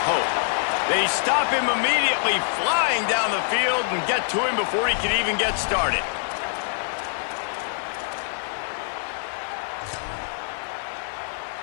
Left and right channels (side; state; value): right; silent; digital silence